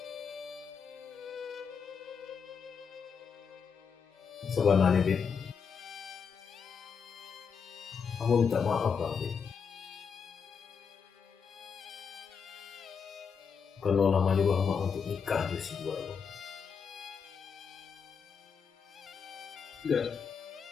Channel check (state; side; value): quieter; right; 6.3 dB